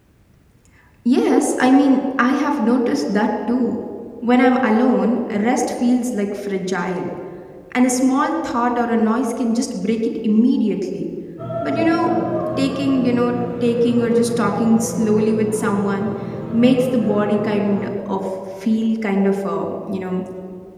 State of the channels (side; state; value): both; identical; correlation 1.00